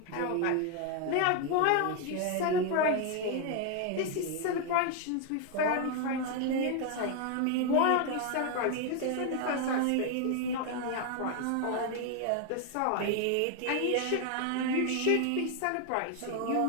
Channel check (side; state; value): both; different; correlation 0.01